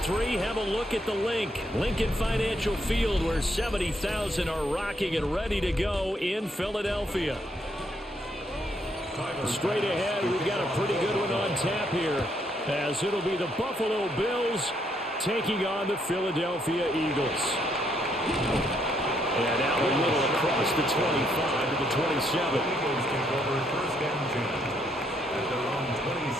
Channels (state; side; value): normal; both; correlation 0.73